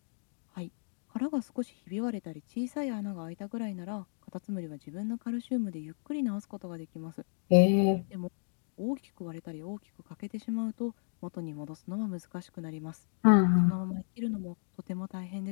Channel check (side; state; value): right; silent; digital silence